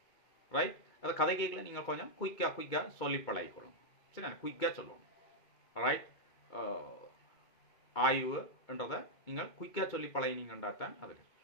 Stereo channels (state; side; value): late; right; 2.2 ms